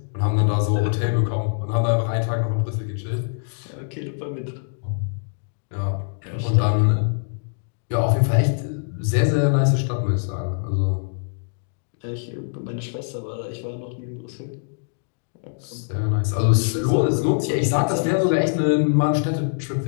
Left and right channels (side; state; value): right; silent; digital silence